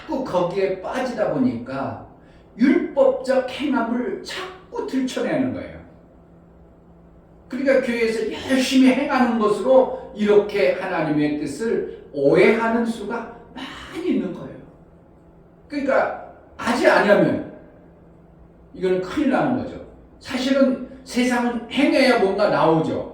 거기에 빠지다 보니까 율법적 행함을 자꾸 들춰내는 거예요. 그러니까 교회에서 열심히 행하는 것으로 이렇게 하나님의 뜻을 오해하는 수가 많이 있는 거예요. 그러니까 하지 않으면 이거는 큰일 나는 거죠. 사실은 세상은 행해야 뭔가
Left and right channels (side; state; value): both; identical; correlation 1.00